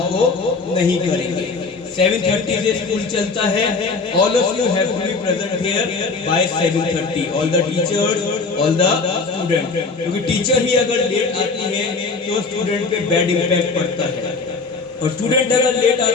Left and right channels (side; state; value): right; quieter; 4.2 dB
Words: नहीं करेंगे। 7:30 से स्कूल चलता है। All of you have to be present here by 7:30, all the teachers, all the student, क्योंकि टीचर ही अगर लेट आती है तो स्टूडेंट पे बैड इम्पैक्ट पड़ता है, और स्टूडेंट अगर लेट